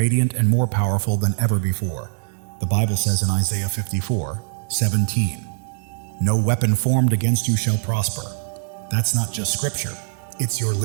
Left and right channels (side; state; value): left; silent; digital silence